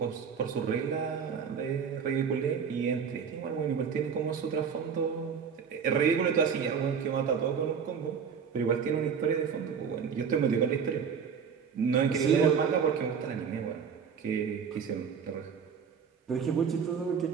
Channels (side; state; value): left; quieter; 6.7 dB